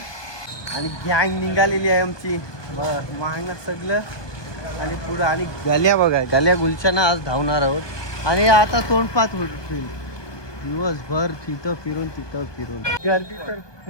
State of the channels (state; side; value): late; right; 1.2 ms